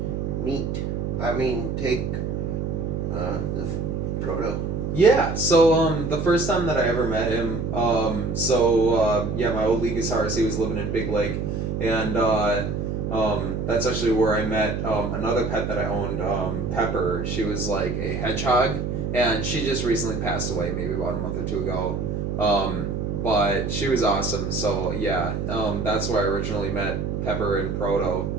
take the Proto? Yeah, so the first time that I ever met him, my old Legasaurus, he was living in Big Lake, and that's actually where I met another pet that I owned, Pepper. She was like a hedgehog, and she just recently passed away, maybe about a month or two ago. But she was awesome, so yeah, that's where I originally met Pepper and Proto.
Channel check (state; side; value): noise; right; hum, 2 dB below the sound